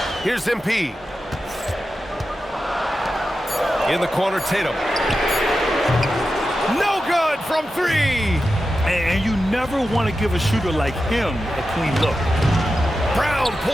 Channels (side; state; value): both; normal; correlation 0.91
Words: Here's MP. In the corner, Tatum. No good from 3. And you never want to give a shooter like him a clean look. Brown